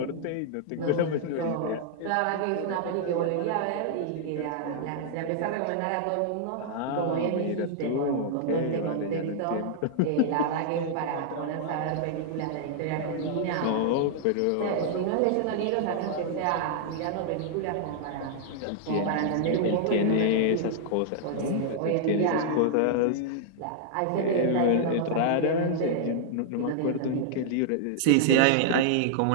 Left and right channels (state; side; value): different; both; correlation -0.01